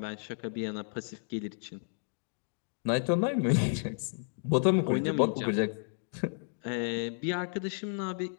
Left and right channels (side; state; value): right; silent; digital silence